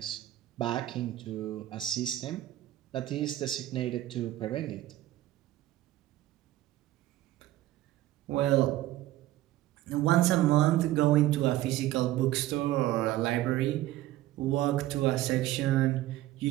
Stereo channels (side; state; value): left; quieter; 15.0 dB